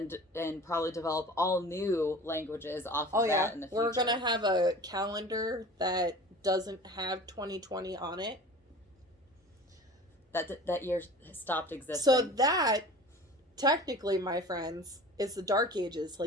then probably develop all new languages off of that in the future. We're going to have a calendar that doesn't have 2020 on it. That year stopped existing. So that, technically, my friends, is the Dark Ages,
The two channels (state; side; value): normal; both; correlation 0.40